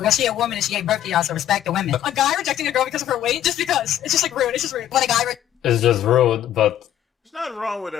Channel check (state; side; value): quieter; right; 11.4 dB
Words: she a woman and she gave birth to y'all, so respect the women. A guy rejecting a girl because of her weight, just because. It's just like rude. It's just rude. When a guy It's just rude, but There's nothing wrong with